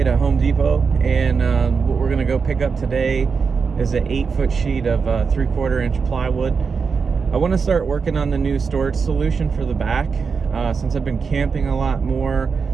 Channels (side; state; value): left; quieter; 5.4 dB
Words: to Home Depot, and what we're gonna go pick up today is an 8-foot sheet of 3/4 inch plywood. I want to start working on the new storage solution for the back. Since I've been camping a lot more,